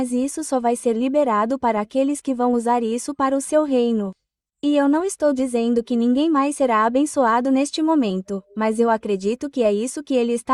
isso só vai ser liberado para aqueles que vão usar isso para o seu reino. E eu não estou dizendo que ninguém mais será abençoado neste momento, mas eu acredito que é isso que ele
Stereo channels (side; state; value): both; identical; correlation 1.00